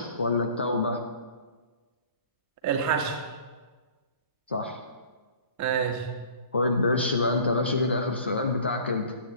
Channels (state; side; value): inverted; both; correlation -0.47